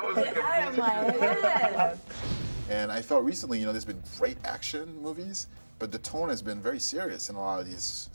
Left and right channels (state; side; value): inverted; both; correlation -1.00